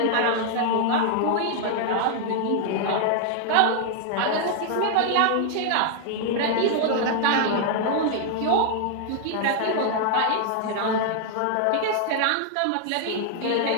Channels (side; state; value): both; different; correlation 0.00